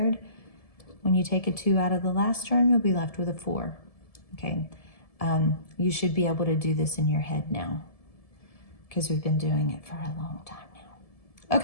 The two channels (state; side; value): late; right; 1.7 ms